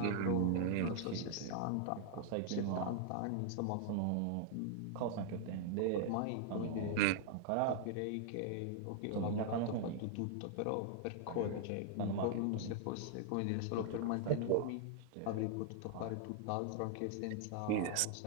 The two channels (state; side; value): different; both; correlation -0.01